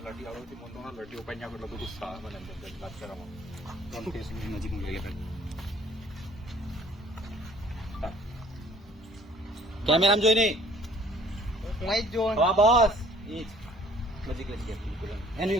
લટી આવડતી મને તો લટી ઉપાઈ એટલો બધું સા મને વાત કરવામાં નજીક કેમેરામાં જોઈ નહીં મોય જો હા બસ ઈ નજીક લઈ ગયા બિલકુલ એનું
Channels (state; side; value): normal; both; correlation 0.55